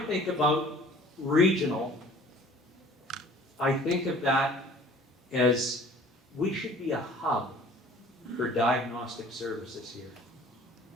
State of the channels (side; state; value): both; normal; correlation 0.50